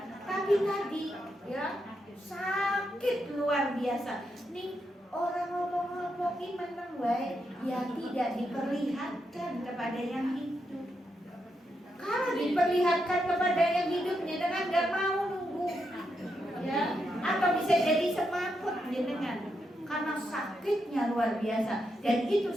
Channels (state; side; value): normal; both; correlation 0.83